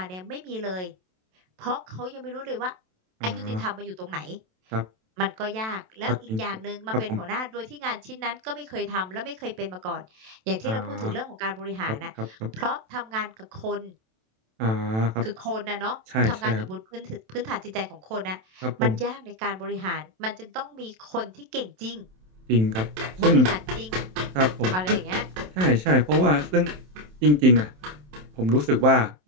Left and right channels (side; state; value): left; late; 27 ms